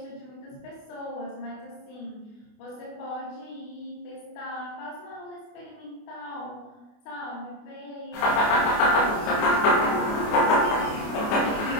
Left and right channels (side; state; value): right; late; 28 ms